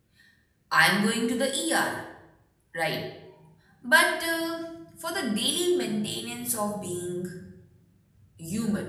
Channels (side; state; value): both; identical; correlation 1.00